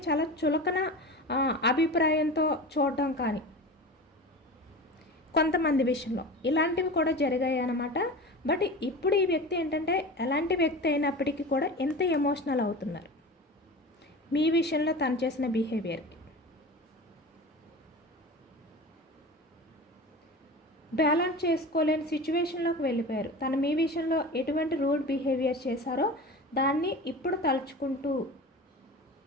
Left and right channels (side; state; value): both; normal; correlation 0.32